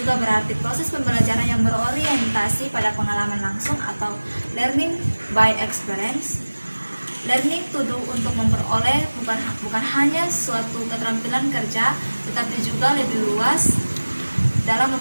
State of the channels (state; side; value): inverted; both; correlation -1.00